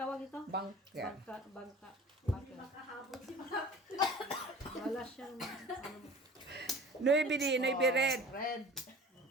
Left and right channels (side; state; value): both; normal; correlation 0.42